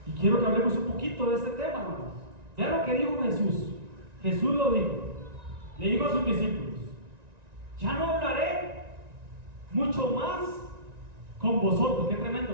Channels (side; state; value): left; late; 1.9 ms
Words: Y quiero que hablemos un poquito de este tema, hermanos. Vean lo que dijo Jesús. Jesús lo dijo. Le dijo a sus discípulos: ya no hablaré mucho más con vosotros. Qué